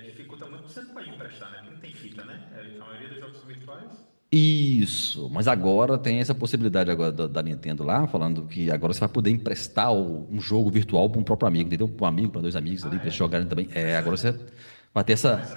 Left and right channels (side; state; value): both; inverted; correlation -1.00